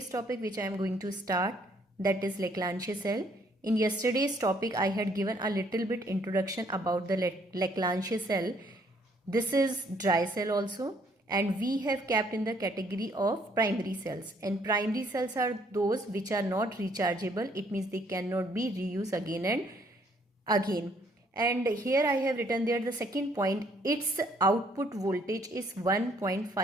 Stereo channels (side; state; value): both; normal; correlation 0.65